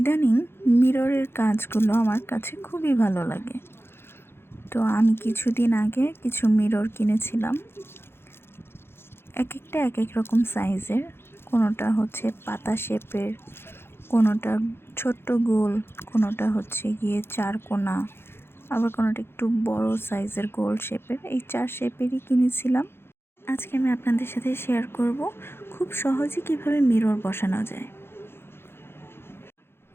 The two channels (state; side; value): late; right; 0.11 ms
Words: মিররের কাজগুলো আমার কাছে খুবই ভালো লাগে। তো আমি কিছুদিন আগে কিছু মিরর কিনেছিলাম। এক একটা এক এক রকম সাইজের। কোনোটা হচ্ছে পাতা শেপের, কোনোটা ছোট্ট গোল, কোনোটা হচ্ছে গিয়ে চারকোনা, আবার কোনোটা একটু বড় সাইজের গোল শেপের। এই 4 শেপেরই কিনেছিলাম। আজকে আমি আপনাদের সাথে শেয়ার করব খুব সহজে কিভাবে মিরর বসানো যায়।